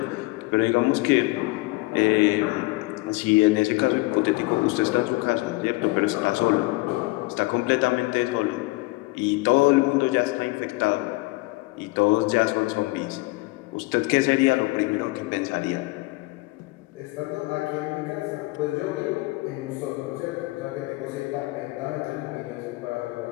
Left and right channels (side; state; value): right; quieter; 23.0 dB